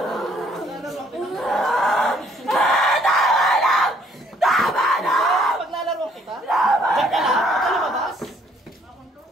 Tama na! Paglalaro kita? Diyan ka lang? Huwag ka lumabas?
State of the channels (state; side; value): normal; both; correlation 0.63